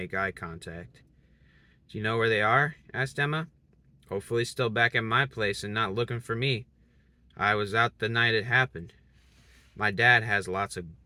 eye contact. Do you know where they are? Asked Emma. Hopefully still back at my place and not looking for me. I was out the night it happened. My dad has lots of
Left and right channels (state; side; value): identical; both; correlation 1.00